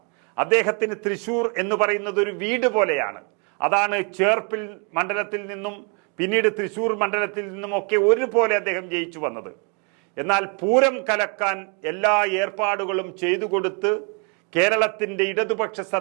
അദ്ദേഹത്തിന് തൃശൂർ എന്ന് പറയുന്നത് ഒരു വീട് പോലെയാണ്. അതാണ് ചേർപ്പിൽ മണ്ഡലത്തിൽ നിന്നും പിന്നീട് തൃശൂർ മണ്ഡലത്തിൽ നിന്നുമൊക്കെ ഒരുപോലെ അദ്ദേഹം ജയിച്ചു വന്നത്. എന്നാൽ പൂരം കലക്കാൻ എല്ലാ ഏർപ്പാടുകളും ചെയ്തു കൊടുത്ത് കേരളത്തിന്റെ ഇടതുപക്ഷ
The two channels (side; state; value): left; quieter; 36.5 dB